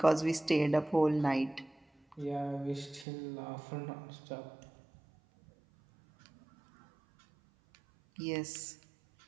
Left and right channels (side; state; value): left; drops out; at 3.1 s